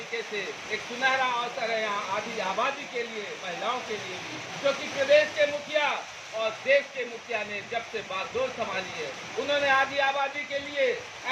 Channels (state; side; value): identical; both; correlation 1.00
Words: से एक सुनहरा अवसर है यहाँ आधी आबादी के लिए, महिलाओं के लिए भी, क्योंकि प्रदेश के मुखिया और देश के मुखिया ने जब से बागडोर संभाली है, उन्होंने आधी आबादी के लिए